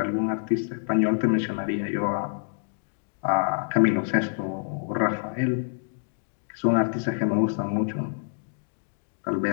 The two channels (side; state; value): right; silent; digital silence